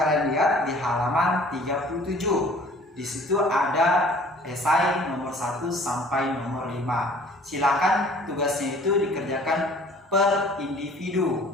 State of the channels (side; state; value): both; normal; correlation 0.51